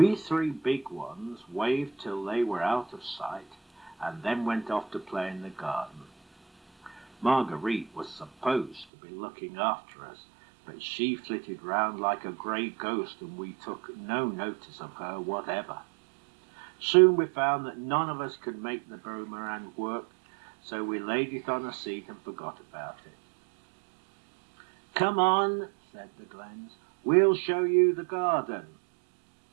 3 big ones waved till they were out of sight, and then went off to play in the garden. Marguerite was supposed to be looking after us, but she flitted round like a grey ghost, and we took no notice of her whatever. Soon we found that none of us could make the boomerang work, so we laid it on a seat and forgot about it. "Come on," said the Glens, "we'll show you the garden."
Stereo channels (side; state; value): left; drops out; at 8.8 s